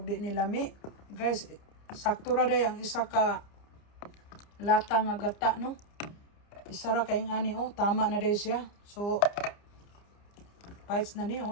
di ni lami. Guys, sakto ra day ang isa ka lata nga gata, no? Isa ra kaing ani, oh. Tama na day siya. So, bites na ni,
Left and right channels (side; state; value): right; late; 29 ms